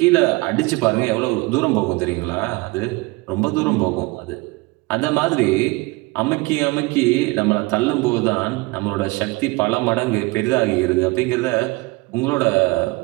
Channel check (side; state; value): left; quieter; 24.3 dB